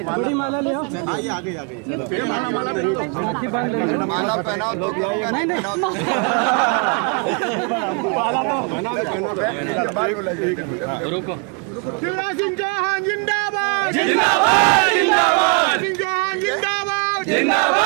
बड़ी माला ले आओ। आगे माला पहनाओ तो रुको। शिवराज सिंह चौहान जिंदाबाद जिंदाबाद जिंदाबाद सिंह चौहान जिंदाबाद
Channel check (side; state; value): left; quieter; 35.1 dB